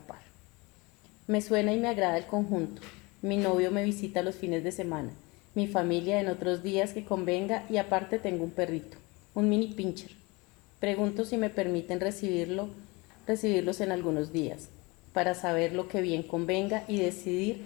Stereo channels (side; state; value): right; quieter; 25.6 dB